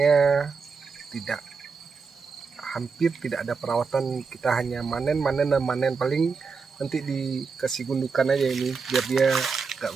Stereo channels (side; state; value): left; quieter; 5.1 dB